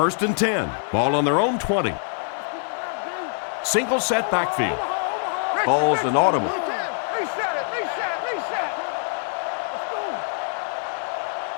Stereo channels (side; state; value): right; silent; 55 dB below the other